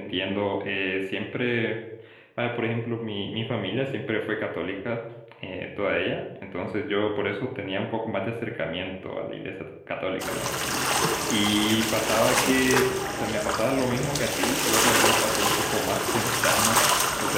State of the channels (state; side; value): identical; both; correlation 1.00